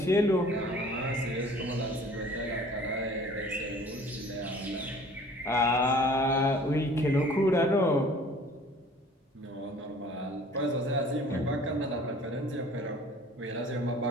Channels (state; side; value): normal; both; correlation 0.50